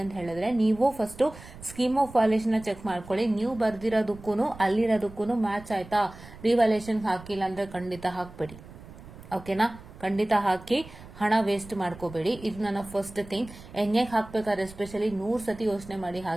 ಅಂತ ಹೇಳಿದ್ರೆ, ನೀವು first scheme of valuation check ಮಾಡ್ಕೊಳ್ಳಿ. ನೀವು ಬರ್ದಿರೋದಕ್ಕೂ ಅಲ್ಲಿರೋದಕ್ಕೂ ಮ್ಯಾಚ್ ಆಯ್ತಾ. ರಿವ್ಯಾಲ್ಯೂಯೇಷನ್ ಹಾಕಿಲ್ಲ ಅಂದ್ರೆ ಖಂಡಿತ ಹಾಕ್ಬೇಡಿ. ಓಕೆನಾ? ಖಂಡಿತ ಹಾಕಿ, ಹಣ ವೇಸ್ಟ್ ಮಾಡ್ಕೋಬೇಡಿ. ಇದು ನನ್ನ ಫಸ್ಟ್ ಥಿಂಗ್. ಎನ್ಎಗೆ ಹಾಕ್ಬೇಕಾದ್ರೆ ಎಸ್ಪೆಷಲಿ 100 ಸತಿ ಯೋಚನೆ ಮಾಡಿ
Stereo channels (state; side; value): noise; right; rumble, 17 dB below the sound